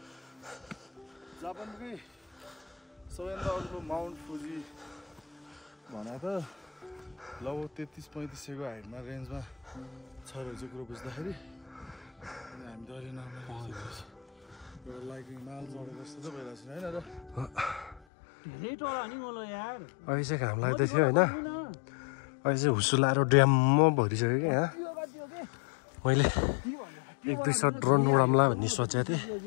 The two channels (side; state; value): right; drops out; at 18.0 s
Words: जापानकै सबैभन्दा अर्को माउन्ट फुजी भने त लगभग 33-35 हाइटमा रेन्जमा छ रहेछ कुरो बुझ्दाखेरि हामी त अहिले एउटा लाइक हिमाल चढेको जस्तो त भइरहेको छैन होइन र धेरै टोला नि मलाई यार अहिले चाहिँ घाम लाग्दै थियो होइन अहिले चाहिँ हुसु लाएर ड्याम्म भरिसक्यो क्या यहाँ मैले 1-2 सट ड्रोन उडाम्ला भन्ने सोचेको थिएँ